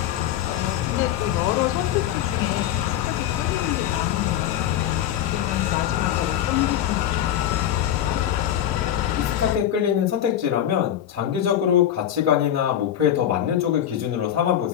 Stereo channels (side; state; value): right; quieter; 11.0 dB